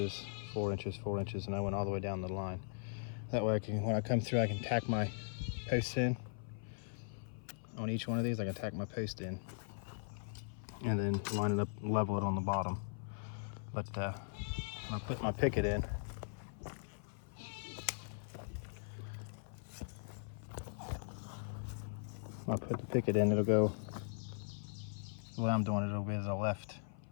4 inches, 4 inches, and I went all the way down the line. That way I can, when I come through, I can tack my posts in. On each one of these, I can tack my post in, and then line it up, level it on the bottom. But when I put my picket in, when I put the picket in, it'll go, the way I'm doing it, it'll be to the left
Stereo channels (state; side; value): silent; right; 51 dB below the other